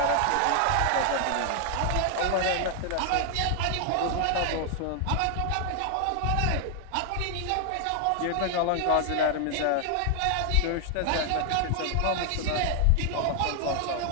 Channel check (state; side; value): different; both; correlation 0.00